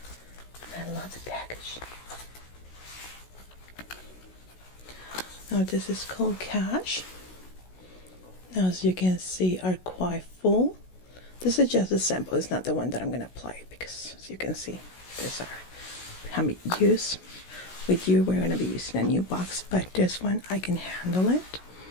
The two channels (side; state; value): right; late; 16 ms